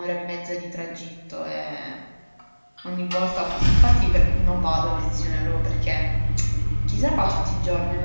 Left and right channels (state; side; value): inverted; both; correlation -1.00